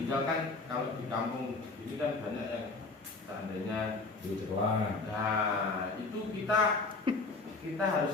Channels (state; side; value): quieter; right; 3.7 dB